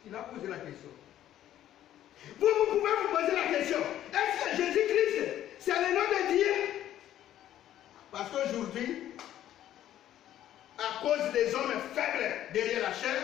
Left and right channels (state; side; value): quieter; right; 12.1 dB